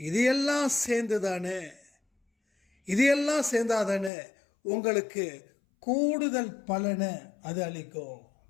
இதையெல்லாம் சேர்ந்து தானே, இதையெல்லாம் சேர்ந்தாதானே உங்களுக்கு கூடுதல் பலனை அது அளிக்கும்.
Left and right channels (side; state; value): right; drops out; at 4.1 s